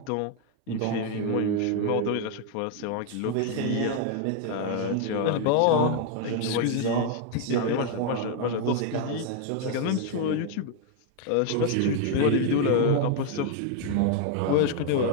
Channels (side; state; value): both; different; correlation 0.00